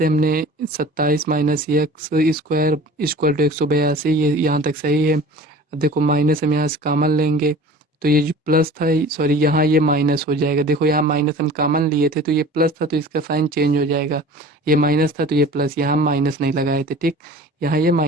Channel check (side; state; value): both; normal; correlation 0.42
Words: हमने 27 minus x square equal to 182, ये यहाँ तक सही है। अब देखो माइनस हम यहाँ से कॉमन लेंगे, तो ये जो प्लस था, सॉरी यहाँ ये माइनस हो जाएगा। देखो यहाँ माइनस हम कॉमन लिए थे तो ये प्लस था, तो इसका साइन चेंज हो जाएगा। ये माइनस था तो ये प्लस, यहाँ हम माइनस नहीं लगाए थे, ठीक। यहाँ ये